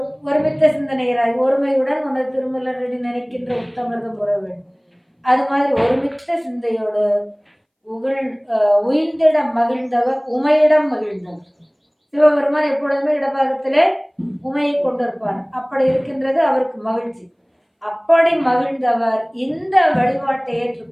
சிந்தனையராய் ஒருமையுடன் அந்த திருமலரடி நினைக்கின்ற உத்தமிர்தம் உற வேண்டும். அது மாதிரி ஒருமித்த சிந்தையோடு உயிர்ந்திட மகிழ்ந்தவர் உமையிடம் மகிழ்ந்தவர். சிவபெருமான் எப்பொழுதுமே இடபாகத்திலே உமையை கொண்டிருப்பார். அப்படி இருக்கின்றது அவருக்கு மகிழ்ச்சி. அப்படி மகிழ்ந்தவர் இந்த வழிபாட்டை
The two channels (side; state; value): both; identical; correlation 1.00